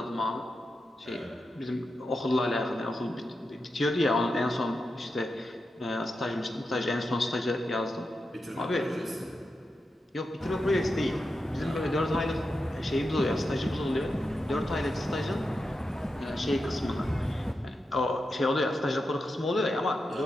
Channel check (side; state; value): both; normal; correlation 0.89